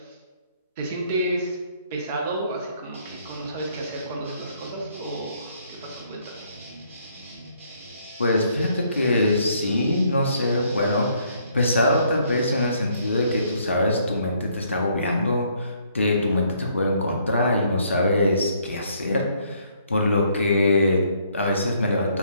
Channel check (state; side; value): inverted; both; correlation -0.67